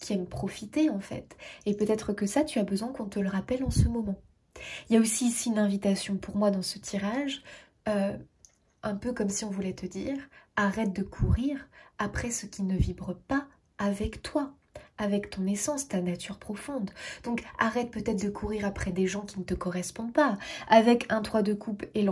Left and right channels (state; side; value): identical; both; correlation 1.00